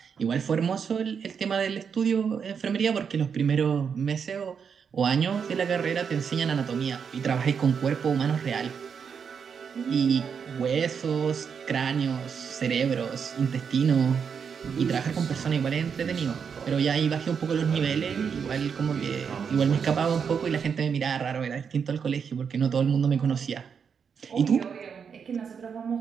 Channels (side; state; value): left; quieter; 6.7 dB